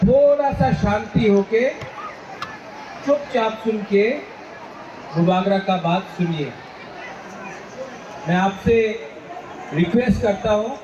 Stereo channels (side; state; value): both; identical; correlation 1.00